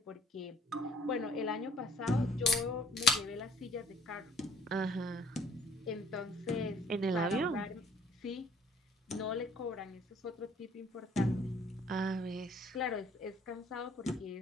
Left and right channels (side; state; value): both; normal; correlation 0.58